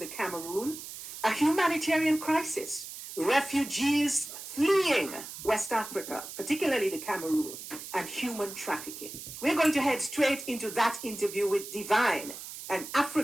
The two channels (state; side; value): noise; right; hiss, 11 dB below the sound